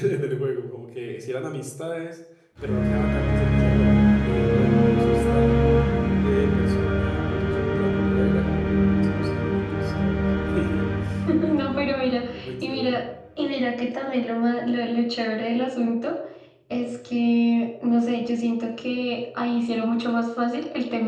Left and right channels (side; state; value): both; identical; correlation 1.00